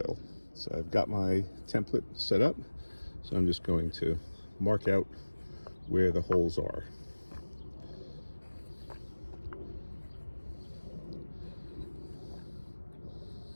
So I've got my template set up, so I'm just going to mark out where the holes are.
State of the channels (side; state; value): both; inverted; correlation -1.00